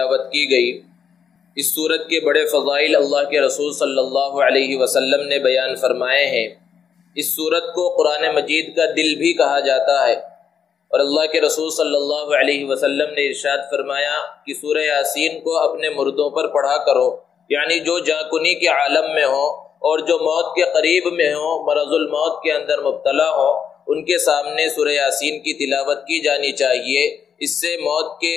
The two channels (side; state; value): right; quieter; 7.4 dB